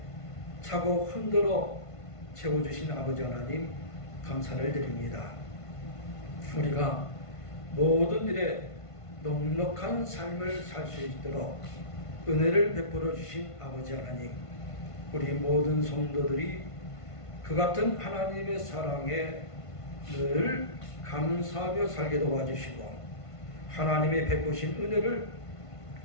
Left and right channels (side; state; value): right; late; 1.5 ms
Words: 차고 흔들어 채워주신 아버지 하나님 감사를 드립니다. 우리가 모든 일에 넉넉한 삶을 살 수 있도록 은혜를 베풀어 주신 아버지 하나님, 우리 모든 성도들이 그 같은 하나님의 사랑에 늘 감사하며 살게 도와주시고 하나님의 베푸신 은혜를